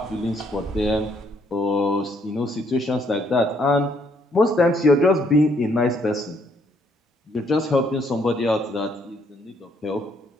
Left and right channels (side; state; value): both; normal; correlation 0.69